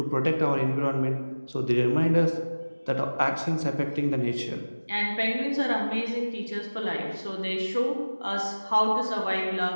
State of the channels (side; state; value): both; inverted; correlation -1.00